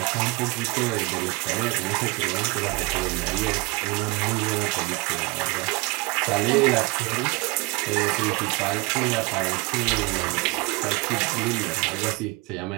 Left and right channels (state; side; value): quieter; left; 25.0 dB